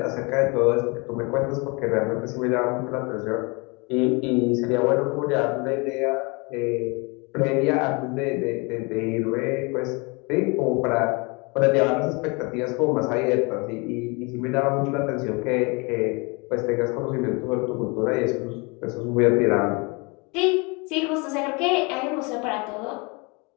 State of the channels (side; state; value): right; quieter; 29.2 dB